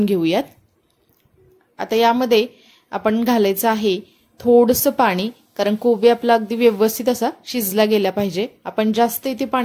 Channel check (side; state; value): both; identical; correlation 1.00